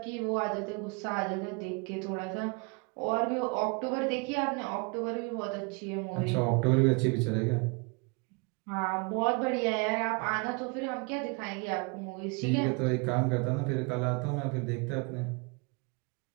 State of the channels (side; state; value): left; quieter; 31.5 dB